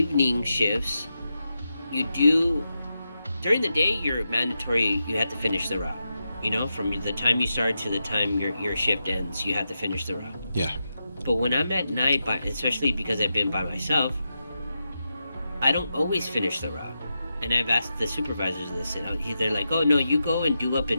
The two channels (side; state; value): both; inverted; correlation -0.88